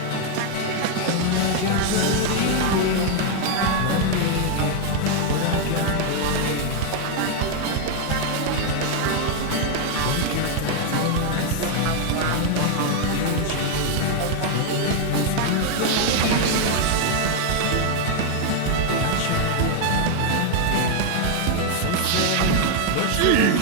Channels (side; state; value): both; different; correlation 0.00